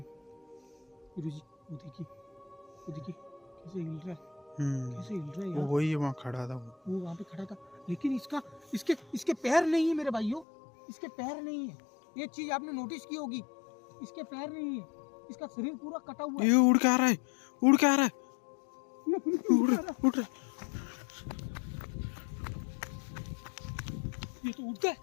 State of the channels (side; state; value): right; drops out; at 10.5 s